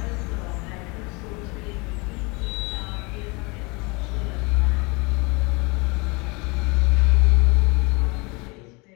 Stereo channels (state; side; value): quieter; right; 27.8 dB